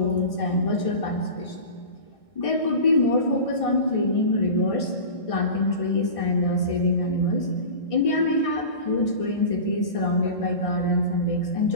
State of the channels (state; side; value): late; right; 1.6 ms